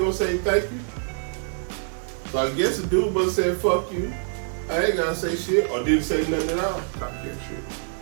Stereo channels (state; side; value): silent; left; 62 dB below the other